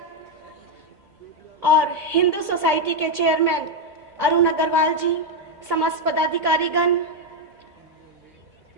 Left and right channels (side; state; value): both; normal; correlation 0.03